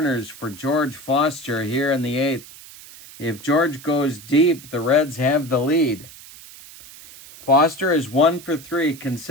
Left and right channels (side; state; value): right; noise; hiss, 18 dB below the sound